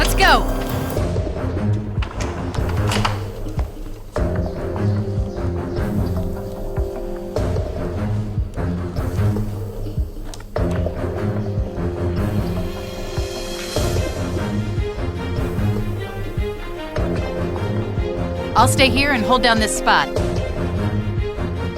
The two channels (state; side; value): identical; both; correlation 1.00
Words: go. I'll stay here and hold down this spot.